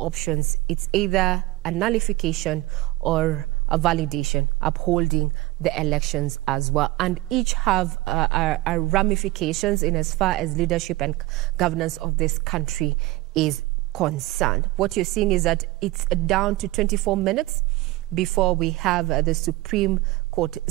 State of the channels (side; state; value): left; quieter; 19.0 dB